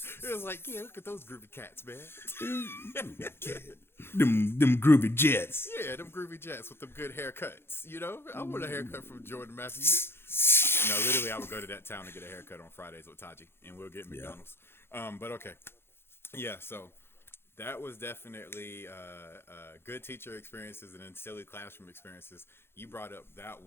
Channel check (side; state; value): right; late; 0.11 ms